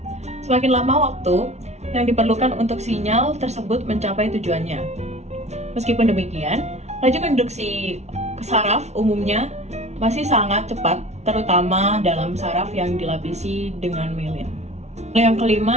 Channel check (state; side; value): late; left; 0.32 ms